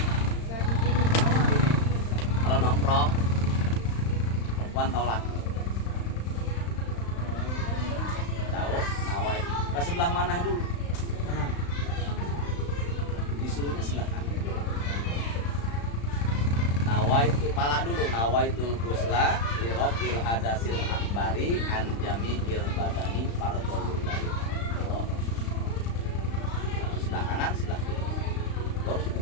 Kalau nongkrong, perempuan tahu laki. Tahu, nawai. Ke sebelah mana dulu? Kanan. Disuruhnya sebelah kanan. Nawai itu pala dulu. Nawaitul ghusla li rafil hadasil akbari an jami'il badani fardhon lillahi. Sebelah kanan, sebelah kiri. Baru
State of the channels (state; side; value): late; right; 35 ms